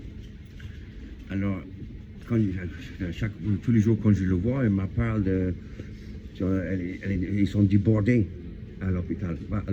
Alors, tous les jours quand je le vois, elle me parle de... Ils sont débordés à l'hôpital. À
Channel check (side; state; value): both; identical; correlation 1.00